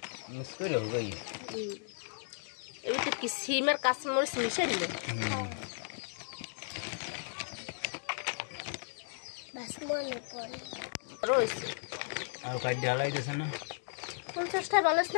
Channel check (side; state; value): right; silent; digital silence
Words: মিক্স করে হবে এবার তো কি সিমের কাঁচামরিচ মিশে দিলে রয়েছে আর কাজ ঢালাই দিয়েছে না 50 টাকা ভালো